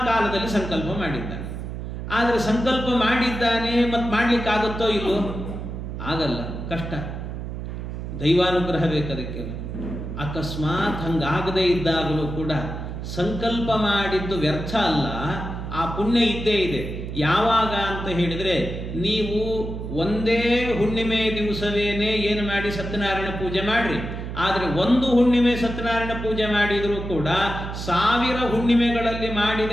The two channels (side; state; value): right; noise; hum, 7 dB below the sound